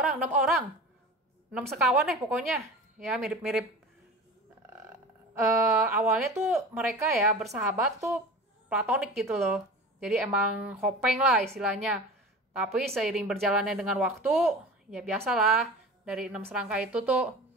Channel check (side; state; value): both; normal; correlation 0.35